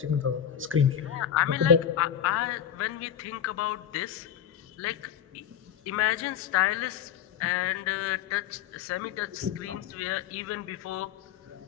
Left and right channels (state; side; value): quieter; right; 9.4 dB